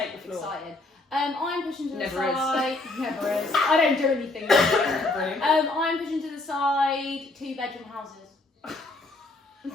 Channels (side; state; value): right; quieter; 3.0 dB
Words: the floor. excited. I'm pushing to the Never side. Never is. I don't do anything. I'm pushing to the side 2-bedroom houses.